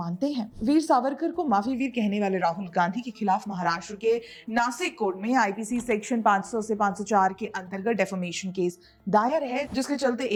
हैं? वीर सावरकर को माफी वीर कहने वाले राहुल गांधी के खिलाफ महाराष्ट्र के नासिक कोर्ट में आईपीसी सेक्शन 500 से 504 के अंतर्गत डेफेमेशन केस दायर है, जिसके चलते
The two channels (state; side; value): identical; both; correlation 1.00